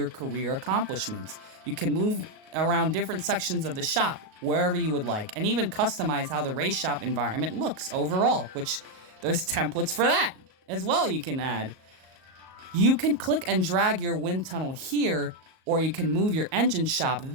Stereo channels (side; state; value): left; late; 38 ms